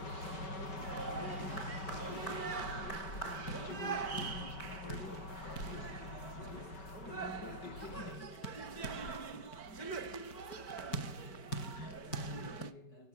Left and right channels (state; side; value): late; right; 5.2 ms